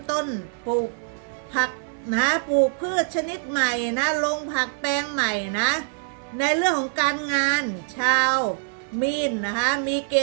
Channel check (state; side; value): silent; left; 59 dB below the other